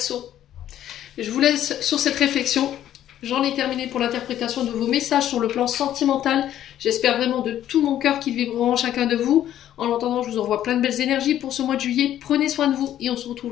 je vous laisse sur cette réflexion. J'en ai terminé pour l'interprétation de vos messages sur le plan sentimental. J'espère vraiment de tout mon cœur qu'ils vibreront en chacun de vous. En attendant, je vous envoie plein de belles énergies pour ce mois de juillet. Prenez soin de vous et on se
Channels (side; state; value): right; quieter; 11.7 dB